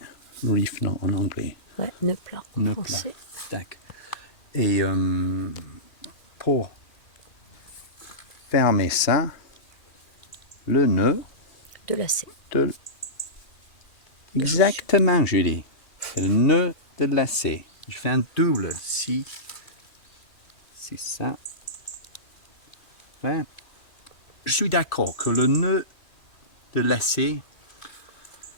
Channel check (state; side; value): late; right; 2.4 ms